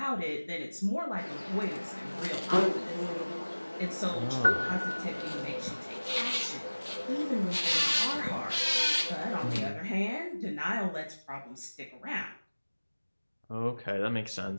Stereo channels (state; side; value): inverted; both; correlation -1.00